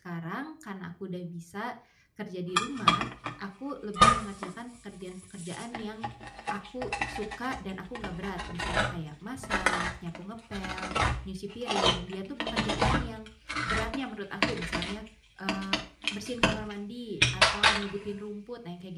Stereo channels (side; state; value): both; identical; correlation 1.00